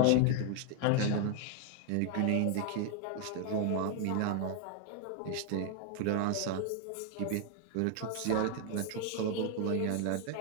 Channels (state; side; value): different; both; correlation 0.00